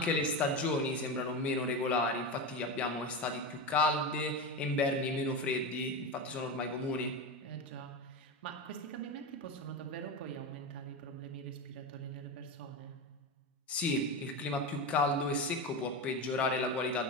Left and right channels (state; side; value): normal; both; correlation 0.19